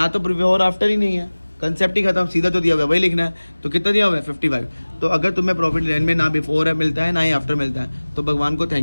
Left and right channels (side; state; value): both; inverted; correlation -1.00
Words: तो बिफोर आफ्टर ही नहीं है, कंसेप्ट ही खत्म, सीधा जो दिया हुआ है वही लिखना है। तो कितना दिया हुआ है? 55। तो अगर तुम्हें प्रॉफिट लाइन में ना बिफोर है मिलता है ना ही आफ्टर मिलता है, तो भगवान को